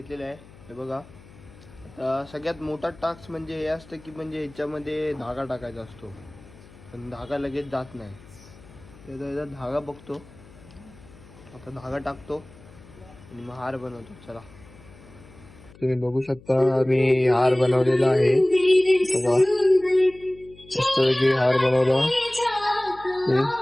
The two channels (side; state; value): left; noise; hum, 22 dB below the sound